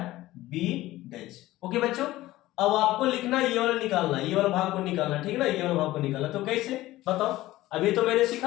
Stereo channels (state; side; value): quieter; right; 16.7 dB